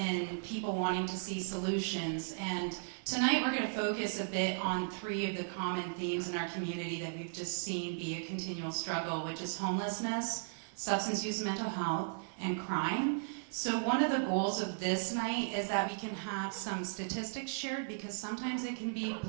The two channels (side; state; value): left; silent; digital silence